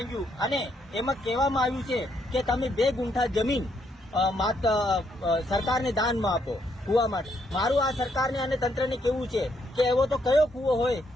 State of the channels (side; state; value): both; normal; correlation 0.74